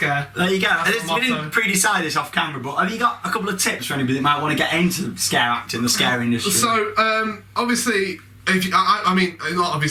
There you go. We didn't pre-decide this off camera, but have you got a couple of tips for anybody that might want to get into scare acting, the scare industry? So, obviously... I mean, not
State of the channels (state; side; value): identical; both; correlation 1.00